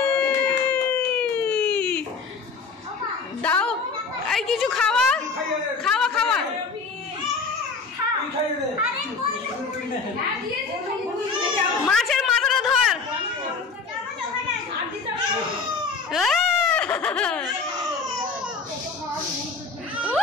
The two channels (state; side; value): quieter; right; 4.7 dB